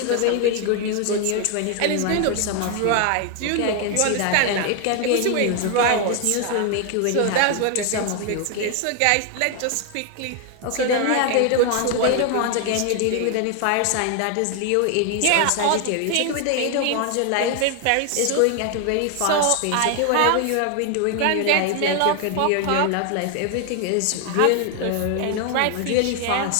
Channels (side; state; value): both; different; correlation 0.00